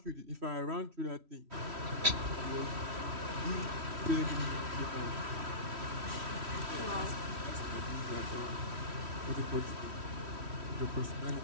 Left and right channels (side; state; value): left; late; 3.1 ms